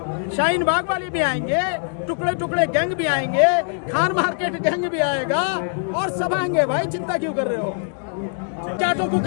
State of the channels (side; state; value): right; silent; 64 dB below the other